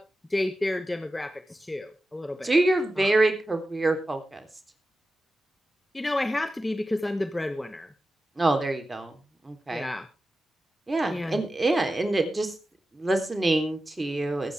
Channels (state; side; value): normal; both; correlation 0.93